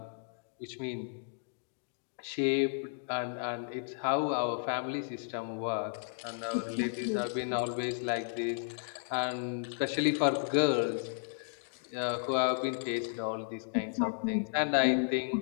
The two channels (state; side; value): silent; right; digital silence